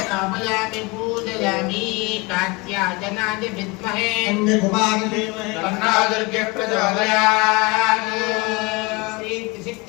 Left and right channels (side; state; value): right; quieter; 26.0 dB